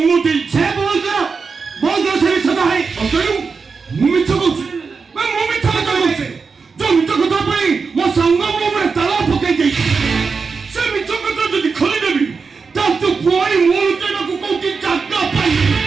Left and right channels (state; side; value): quieter; left; 5.0 dB